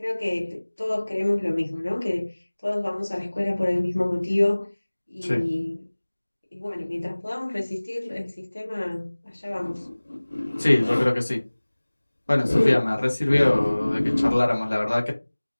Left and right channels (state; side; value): inverted; both; correlation -1.00